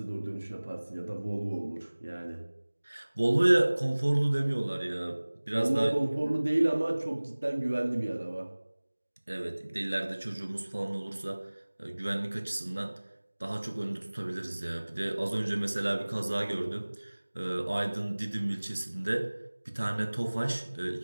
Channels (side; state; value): both; inverted; correlation -1.00